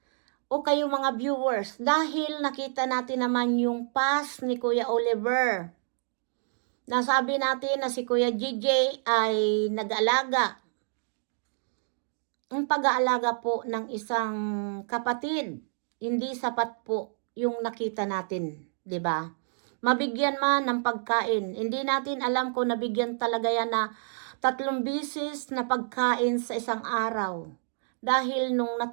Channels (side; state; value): left; silent; digital silence